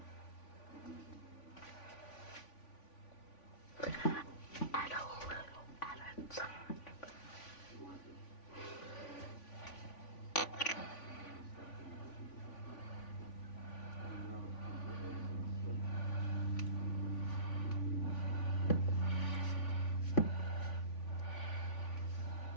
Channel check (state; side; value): late; right; 3.5 ms